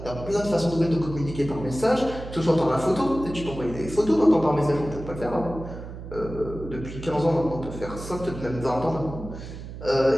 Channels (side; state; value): right; noise; hum, 11 dB below the sound